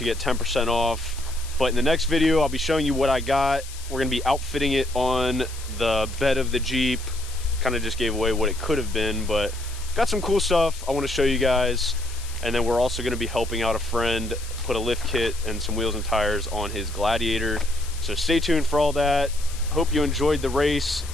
get 10% off. But in the next video, I'll be showing you what I got. We're gonna be outfitting it on the bed of the Jeep. Kind of just gave away what it could have been, but got some cool stuff I want to show you guys. And then we're also going to be helping out a friend put a lift kit and some wheels and tires on his Gladiator. So stay tuned for all that. Hope you enjoyed the race.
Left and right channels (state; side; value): noise; left; hiss, 15 dB below the sound